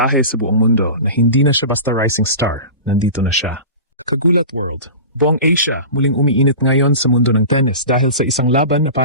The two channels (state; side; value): inverted; both; correlation -0.33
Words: sa buong mundo na hindi na siya basta rising star, nandito na siya. Kagulat World, buong Asia muling umiinit ngayon sa mundo ng tennis dahil sa isang laban na